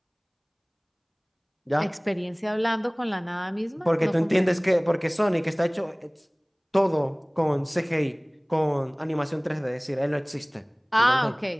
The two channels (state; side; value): identical; both; correlation 1.00